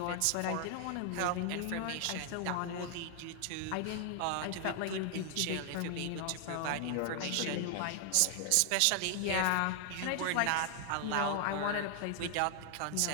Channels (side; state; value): both; different; correlation 0.00